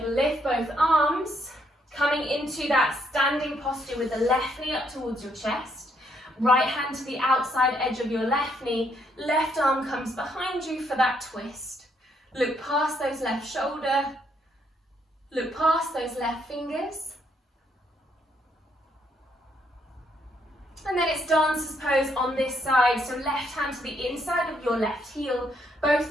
lift both arms, coming into that standing posture with the left knee up towards your chest. Right hand to the outside edge of your left knee, left arm comes behind you for that twist. Look past those left shoulder, look past those left fingers. And then it's dancer's pose on this side, so left hand to the inside of your left heel,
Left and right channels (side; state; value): both; normal; correlation 0.73